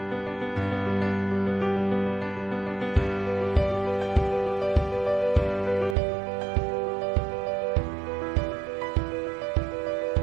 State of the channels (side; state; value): left; drops out; at 6.0 s